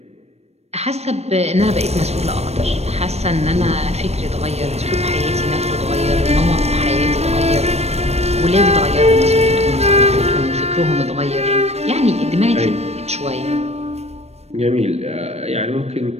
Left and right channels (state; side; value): late; left; 0.31 ms